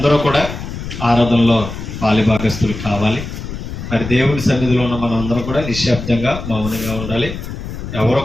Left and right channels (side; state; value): left; noise; rumble, 8 dB below the sound